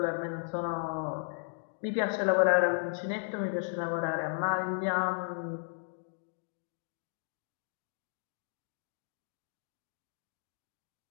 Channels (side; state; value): right; silent; digital silence